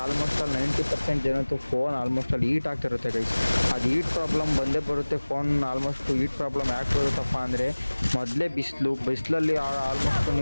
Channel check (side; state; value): both; inverted; correlation -1.00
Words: ಆಲ್ಮೋಸ್ಟ್ ಅಲ್ಲಿ 90% ಜನತ್ತು ಫೋನ್ ಆಲ್ಮೋಸ್ಟ್ ಅಲ್ಲಿ ಹೀಟ್ ಆಗ್ತಿರುತ್ತೆ ಗೈಸ್. ಅದು ಹೀಟ್ ಪ್ರಾಬ್ಲಮ್ ಬಂದೇ ಬರುತ್ತೆ. ಫೋನ್ ಆಲ್ಮೋಸ್ಟ್ ಹೀಟ್ ಪ್ರಾಬ್ಲಮ್ ಯಾಕೆ ಬರುತ್ತಪ್ಪ ಅಂದರೆ ಮೊದಲೇ ಬಿಸಿಲಲ್ಲಿ ಆಲ್ಮೋಸ್ಟ್